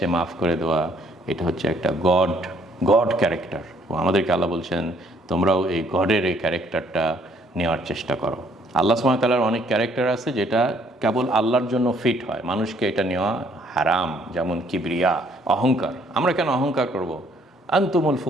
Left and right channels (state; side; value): normal; both; correlation 0.65